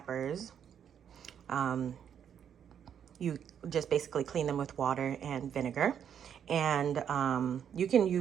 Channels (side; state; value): left; quieter; 8.6 dB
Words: You just basically clean them with water and vinegar. And you can